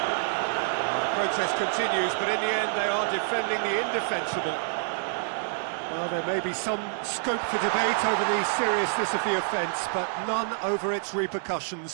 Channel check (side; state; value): left; silent; digital silence